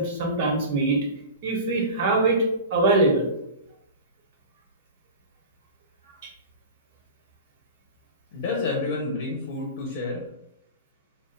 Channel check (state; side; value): inverted; both; correlation -0.32